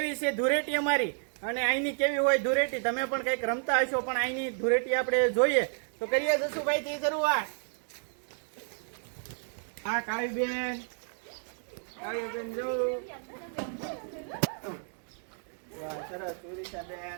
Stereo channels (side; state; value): left; silent; 57 dB below the other